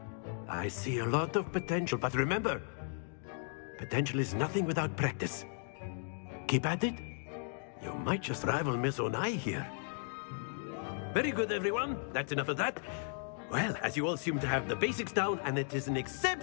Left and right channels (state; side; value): silent; right; 54 dB below the other